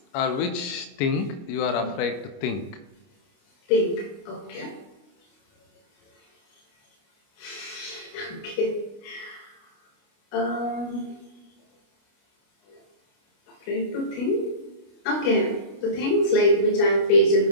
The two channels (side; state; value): right; late; 29 ms